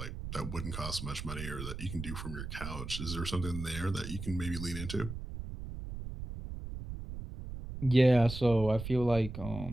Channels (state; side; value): noise; right; rumble, 8 dB below the sound